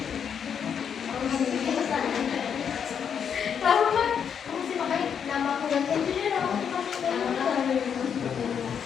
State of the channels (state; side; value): quieter; right; 7.6 dB